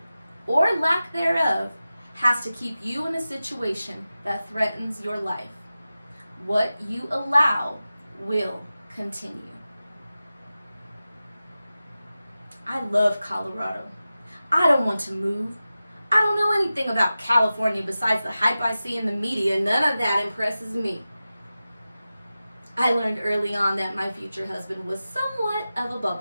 or lack thereof has to keep you in a situation that threatens your life. What you allow will continue. I love Colorado. I don't want to move. I don't know anything about California besides the hype I see in the media. None of that impresses me. I learned early on that my future husband was somewhat of a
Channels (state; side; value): inverted; both; correlation -0.94